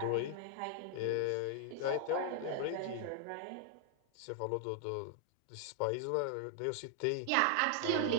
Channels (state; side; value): different; both; correlation 0.00